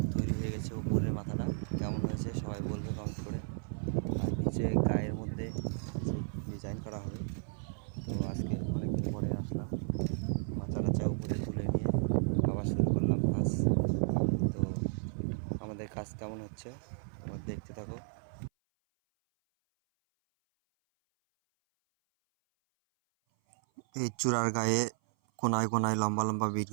তৈরি হয়ে গেছে। উপরের মাথাটা কেমন হয়েছে সবাই বলবে কমেন্ট করে। আর নিচে গায়ের মধ্যে ডিজাইন করা হবে। তো আজকে অনেক দিন পরে আসলাম, মাথা টাচা উপরে তুলে নিয়ে আবার শুরু করলাম কাজ। তো আমাদের কাজ কেমন হচ্ছে তোমরা দেখতে থাকো। এই চূড়ার গায়ে কোনায় কোনায় লম্বা লম্বা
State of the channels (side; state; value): left; silent; 55 dB below the other